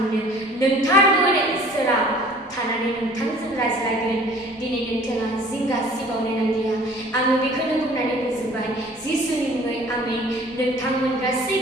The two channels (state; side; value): normal; both; correlation 0.50